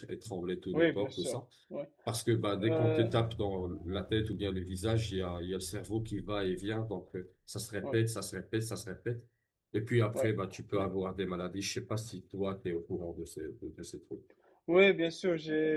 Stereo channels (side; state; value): both; identical; correlation 1.00